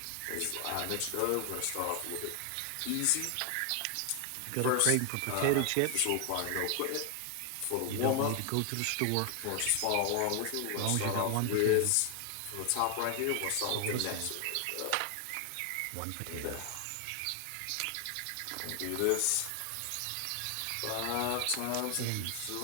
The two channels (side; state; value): both; different; correlation 0.00